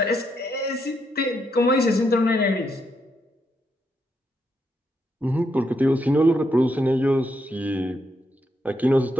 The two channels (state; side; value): normal; both; correlation 0.79